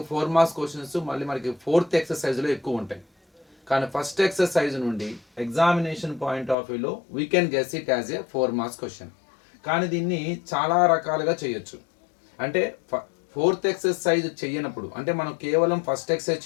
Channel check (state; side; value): drops out; right; at 6.6 s